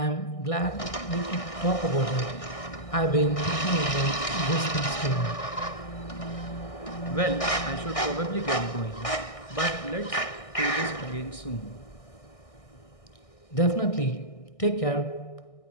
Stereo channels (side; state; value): right; late; 1.6 ms